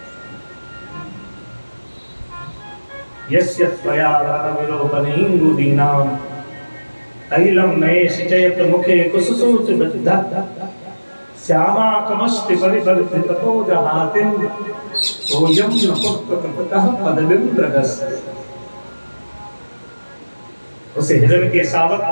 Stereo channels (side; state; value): both; inverted; correlation -1.00